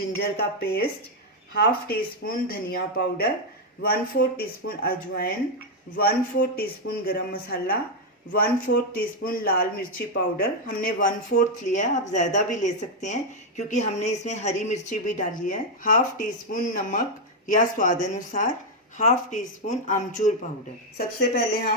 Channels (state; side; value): normal; both; correlation 0.02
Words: का पेस्ट, हाफ टी स्पून धनिया पाउडर, 1/4 टीस्पून अजवाइन, 1/4 टीस्पून गरम मसाला, 1/4 टीस्पून लाल मिर्ची पाउडर। हमने 1/4 लिया है, आप ज़्यादा भी ले सकते हैं क्योंकि हमने इसमें हरी मिर्ची भी डाली है। हाफ टी स्पून नमक या स्वाद अनुसार, हाफ टी स्पून आमचूर पाउडर। सबसे पहले